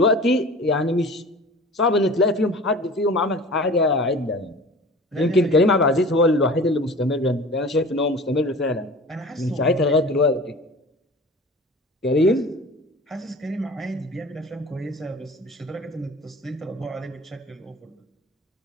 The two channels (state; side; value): normal; both; correlation 0.40